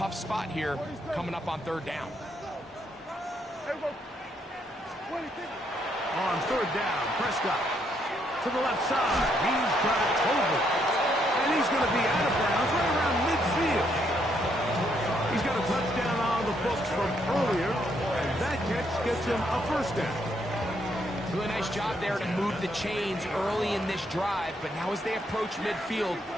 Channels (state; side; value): normal; both; correlation 0.73